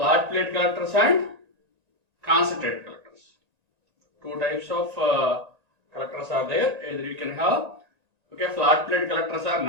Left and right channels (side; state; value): left; late; 1.9 ms